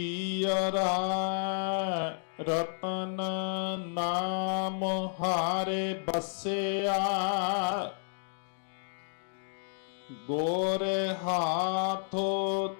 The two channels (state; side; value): silent; right; digital silence